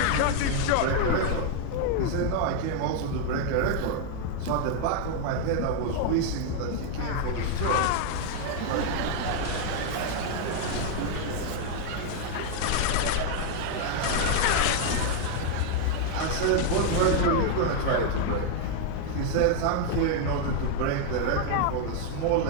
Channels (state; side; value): different; both; correlation 0.00